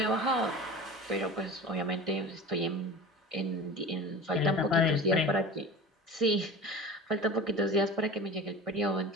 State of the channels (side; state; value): both; normal; correlation 0.35